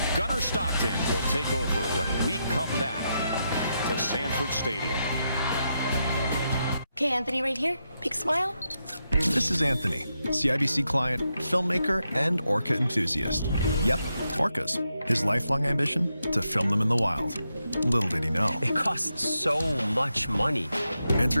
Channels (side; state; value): both; inverted; correlation -0.84